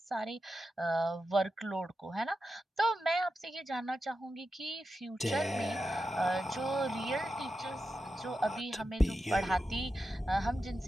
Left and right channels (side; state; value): both; normal; correlation 0.90